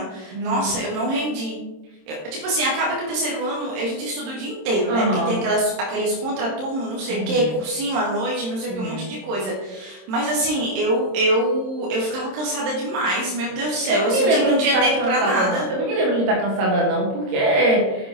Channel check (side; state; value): left; late; 26 ms